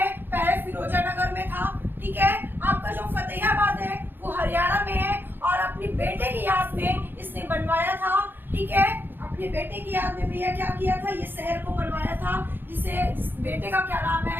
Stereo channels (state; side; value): late; left; 0.098 ms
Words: पहले फिरोजा नगर में था। ठीक है, आपका जो फतेहाबाद है वो हरियाणा में है और अपनी बेटे की याद में इसने बनवाया था। ठीक है, अपने बेटे की याद में भैया क्या किया था, ये शहर को बनवाया था, जिस बेटे का क्या नाम